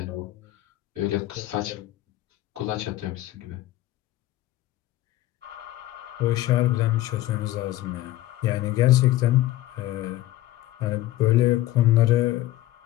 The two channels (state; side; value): quieter; right; 15.3 dB